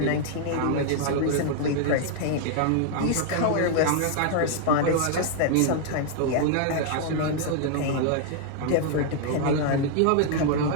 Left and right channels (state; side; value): different; both; correlation 0.00